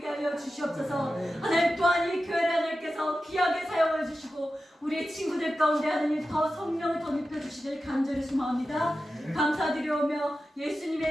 하여 주시옵소서. 하나님 또한 이 교회를 하나님께서 귀하게 사용해 주시고 우리 친구들 가운데 하나님 더 성령을 더 입혀주시길 간절히 소망합니다. 감사드리오며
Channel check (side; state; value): both; normal; correlation 0.92